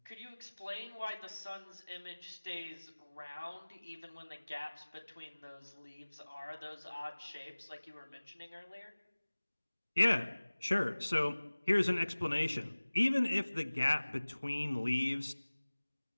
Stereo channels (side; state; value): both; inverted; correlation -1.00